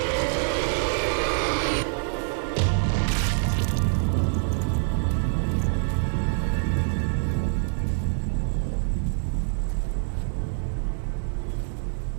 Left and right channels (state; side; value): silent; left; digital silence